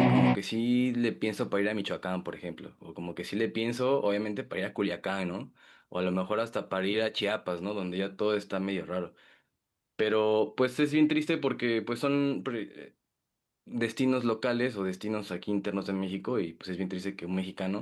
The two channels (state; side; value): identical; both; correlation 1.00